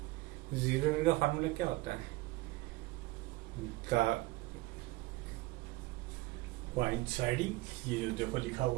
जीरो एरर का फार्मूला क्या होता है, कोइंसाइडिंग, ये जो देखो लिखा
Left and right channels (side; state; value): left; quieter; 20.4 dB